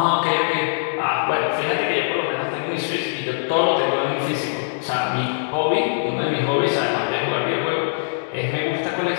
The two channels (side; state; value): right; quieter; 36.1 dB